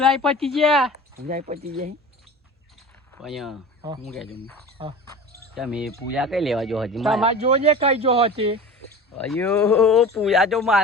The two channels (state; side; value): normal; both; correlation 0.36